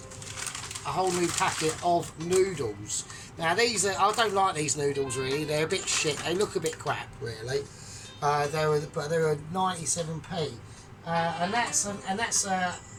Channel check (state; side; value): identical; both; correlation 1.00